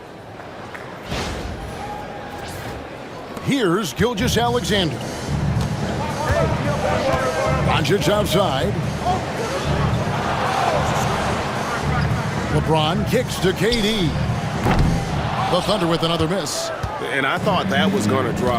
Here's Gilgeous-Alexander. Doncic outside. LeBron kicks to KD. The Thunder with another miss. And I thought that was going to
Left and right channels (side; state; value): both; identical; correlation 1.00